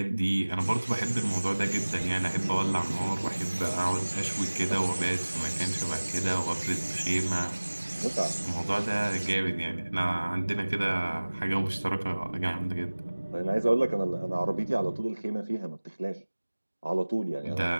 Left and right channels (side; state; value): both; inverted; correlation -1.00